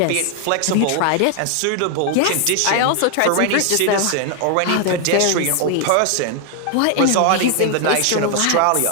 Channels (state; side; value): different; both; correlation 0.00